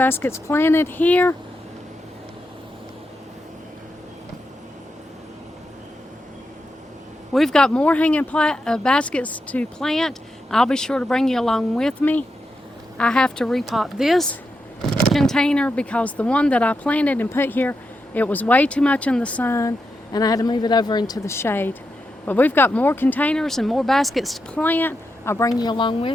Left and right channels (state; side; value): normal; both; correlation 0.86